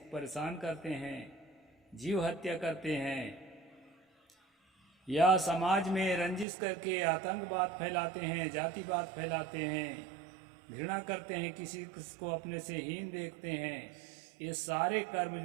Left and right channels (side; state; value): left; drops out; at 6.5 s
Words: परेशान करते हैं, जीव हत्या करते हैं, या समाज में रंजिश करके आतंकवाद फैलाते हैं, जातिवाद फैलाते हैं, घृणा करते हैं, किसी को अपने से हीन देखते हैं, ये सारे कर्म